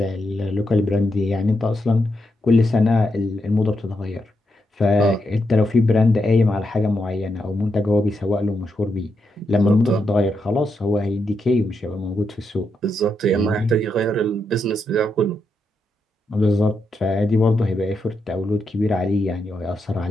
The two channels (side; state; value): both; normal; correlation 0.83